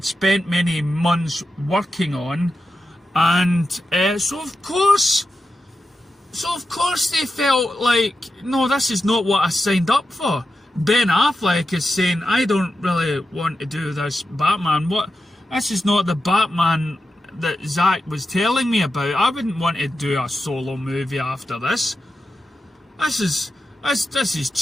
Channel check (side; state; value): both; normal; correlation 0.89